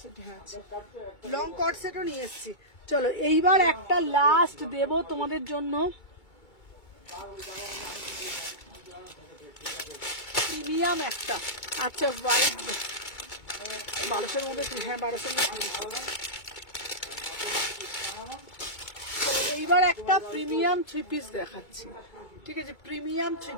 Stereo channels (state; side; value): late; right; 2.2 ms